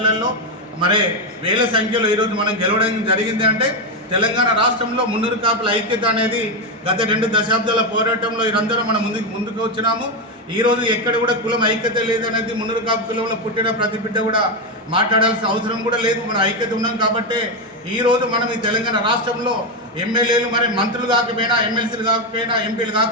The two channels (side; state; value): both; normal; correlation 0.08